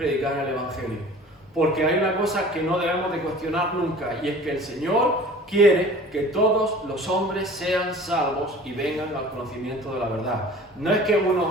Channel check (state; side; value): normal; both; correlation 0.44